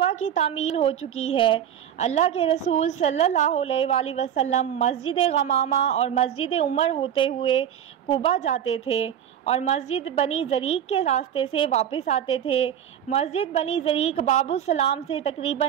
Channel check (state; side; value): quieter; left; 9.7 dB